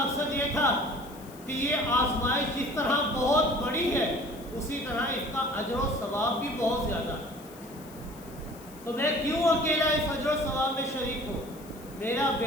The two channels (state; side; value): noise; left; hiss, 21 dB below the sound